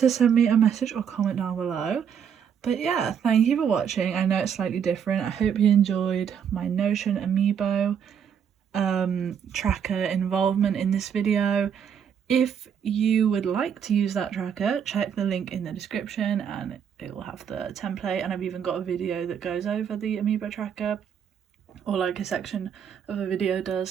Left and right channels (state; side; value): quieter; left; 7.9 dB